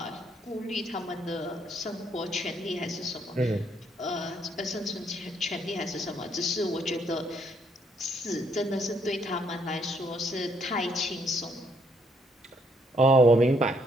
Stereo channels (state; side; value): normal; both; correlation 0.70